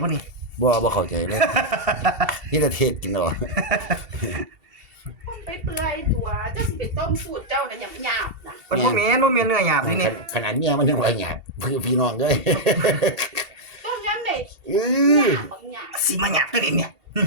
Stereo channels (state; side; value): late; left; 2.7 ms